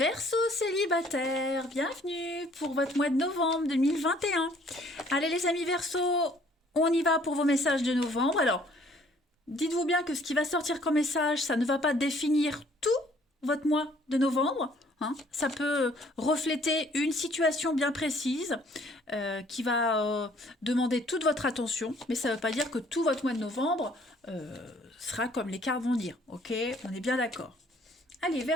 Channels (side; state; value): both; normal; correlation 0.60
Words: célibataire, bienvenue pour votre mois de novembre 2021. Allez les amis Verseau, on y va pour vos messages de novembre. Alors, dites-vous bien que ce qui va sortir comme message, ça ne va pas définir tout votre mois de novembre, hein. Ça peut refléter une situation bien précise qui va demander toute votre attention, mais ça ne veut pas dire que tout votre mois de novembre sera comme les cartes vont dire. Ok, on est bien d'accord. Allez,